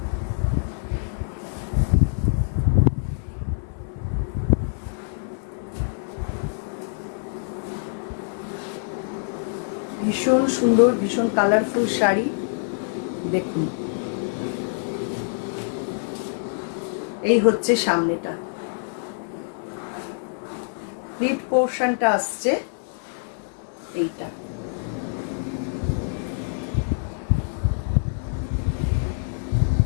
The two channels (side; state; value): right; silent; digital silence